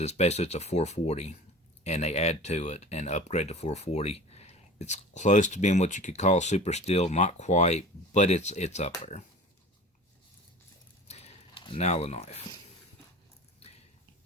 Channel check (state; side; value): normal; both; correlation 0.38